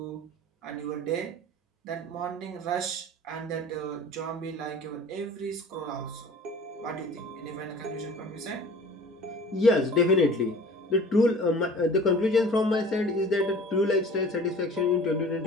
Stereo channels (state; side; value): normal; both; correlation 0.44